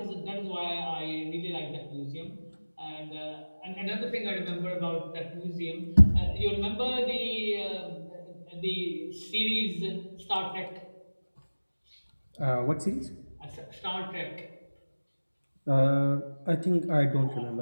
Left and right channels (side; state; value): both; inverted; correlation -1.00